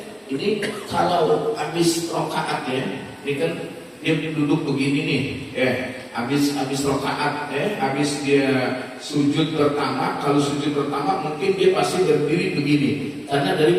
ini kalau habis rakaat ini kan dia duduk begini nih, habis rakaat, habis dia sujud pertama. Kalau sujud pertama mungkin dia pasti berdiri begini, karena dari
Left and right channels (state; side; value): identical; both; correlation 1.00